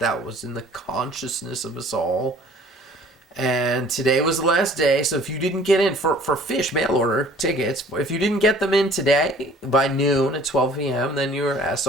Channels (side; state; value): both; normal; correlation 0.52